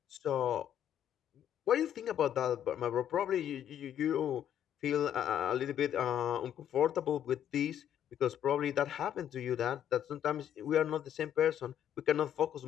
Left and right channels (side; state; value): right; quieter; 10.2 dB